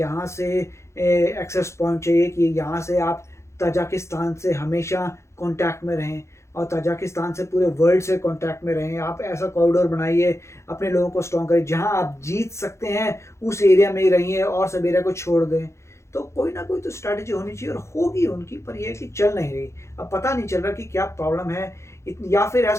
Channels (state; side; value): late; right; 0.14 ms